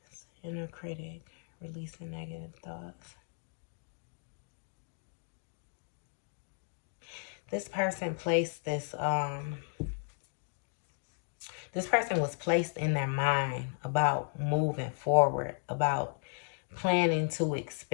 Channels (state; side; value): silent; right; 55 dB below the other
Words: inner critic, releasing negative thoughts. This person placed this person was placed in their mind about moving forward, about planning to